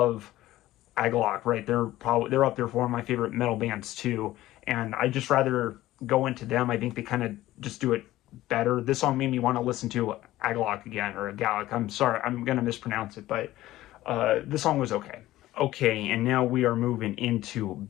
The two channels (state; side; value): quieter; right; 15.7 dB